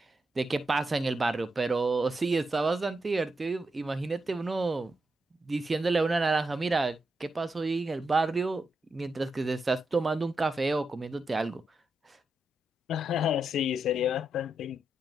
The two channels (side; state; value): both; normal; correlation 0.85